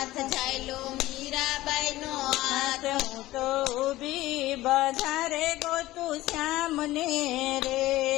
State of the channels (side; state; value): right; quieter; 17.0 dB